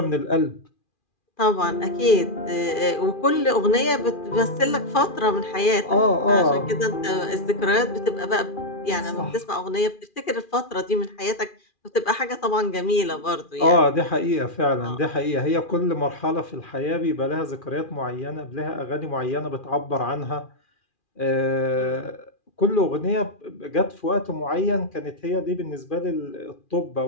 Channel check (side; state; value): right; late; 2.4 ms